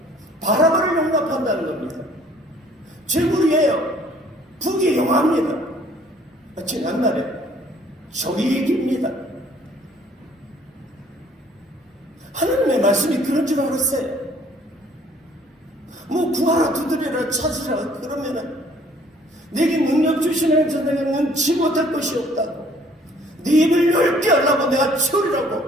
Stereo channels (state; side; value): normal; both; correlation 0.58